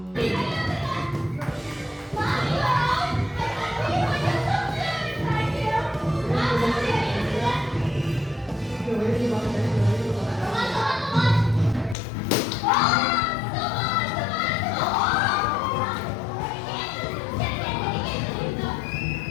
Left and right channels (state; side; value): drops out; right; at 12.0 s